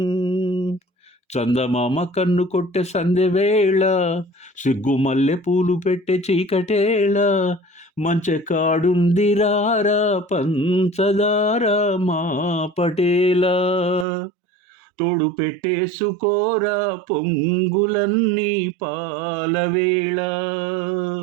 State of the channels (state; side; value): drops out; left; at 14.1 s